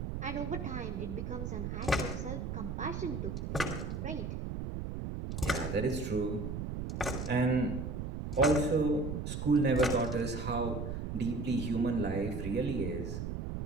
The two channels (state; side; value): noise; right; rumble, 4 dB below the sound